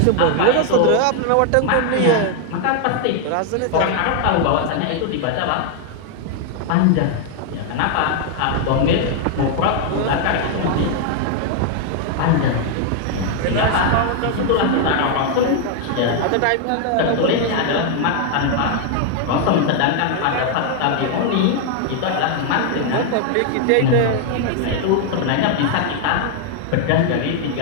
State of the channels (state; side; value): different; both; correlation 0.00